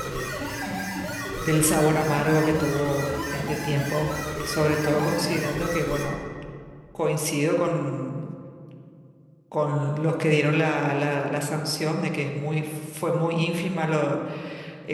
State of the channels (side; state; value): both; identical; correlation 1.00